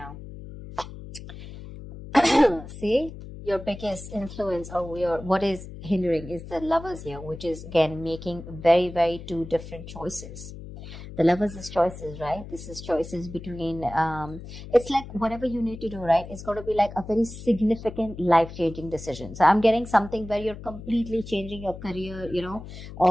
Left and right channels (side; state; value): left; noise; hum, 13 dB below the sound